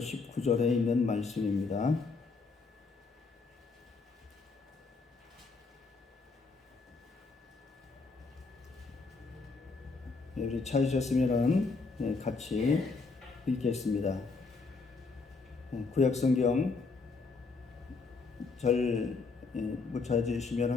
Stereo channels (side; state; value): right; quieter; 4.2 dB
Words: 있는 말씀입니다. 우리 찾으셨으면 같이 읽겠습니다. 구약 성경 절 못